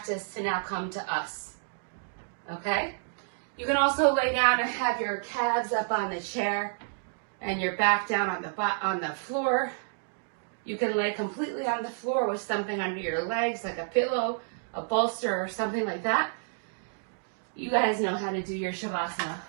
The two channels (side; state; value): left; silent; digital silence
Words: to now come to us. Okay? You can also lay down and have your calves up on the chair and your back down on the floor. You can lay completely on the floor with something under your legs, like a pillow, a bolster, or something like that. You guys know how to do your Shavasana.